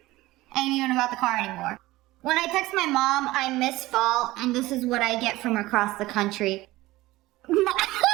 even about the car anymore. When I text my mom, I miss fall, and this is what I get from across the country.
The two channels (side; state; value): left; quieter; 18.3 dB